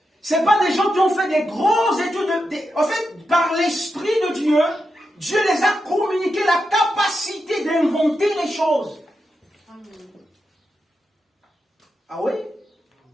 Ce n'est pas des gens qui ont fait des grosses études. En fait, par l'esprit de Dieu, Dieu les a communiqué la capacité d'inventer les choses. Ah oui?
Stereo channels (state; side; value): normal; both; correlation 0.87